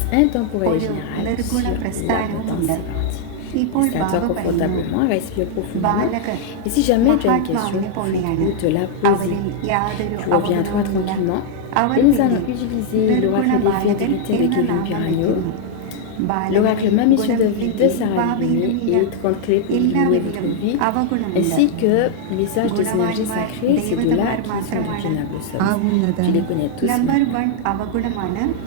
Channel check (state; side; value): different; both; correlation 0.00